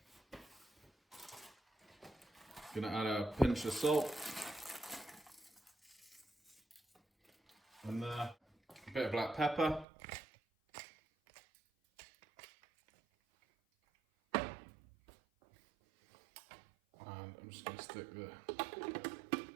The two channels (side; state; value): left; drops out; at 9.9 s